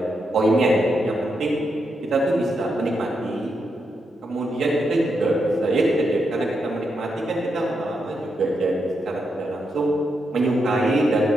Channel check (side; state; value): both; normal; correlation 0.83